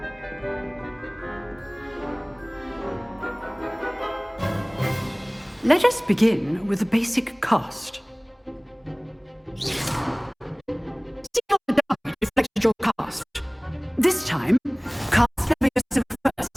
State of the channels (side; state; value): both; identical; correlation 1.00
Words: Let us begin with the basic cast. See how the die reflected your cast. This time, cast Levioso